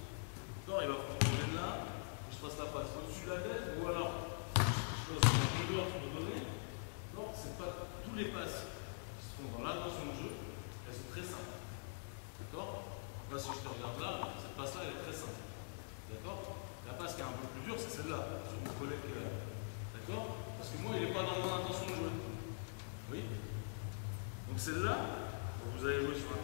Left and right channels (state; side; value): silent; right; digital silence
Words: D'accord? Il va prendre le là, je fasse la passe au-dessus de la tête, ou alors. Chose que je dois te donner, non, c'est pas tous les passes qui se font dans l'intention de jeu, elles sont très simples. D'accord? Là, si je te regarde là, cette passe-là, elle est très simple. D'accord? La passe qui est un peu plus dure, c'est celle-là, sur mon collègue qui est là. D'accord? Parce que moi, il n'est pas dans mon intention de jouer. Oui? Donc celle-là, vous allez jouer sur un